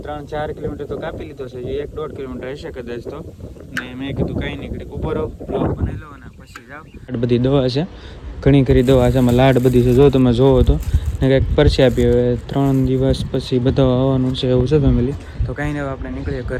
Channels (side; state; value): both; identical; correlation 1.00